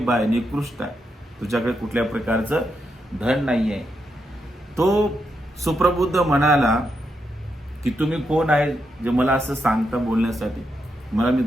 आहे, निकृष्ट आहे, तुझ्याकडे कुठल्या प्रकारचं धन नाही आहे. तो सुप्रबुद्ध म्हणाला की तुम्ही कोण आहे जे मला असं सांगता बोलण्यासाठी. मला मी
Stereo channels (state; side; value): normal; both; correlation 0.83